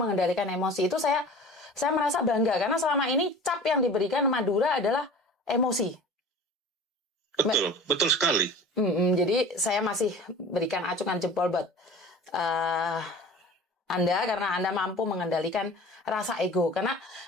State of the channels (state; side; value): normal; both; correlation 0.39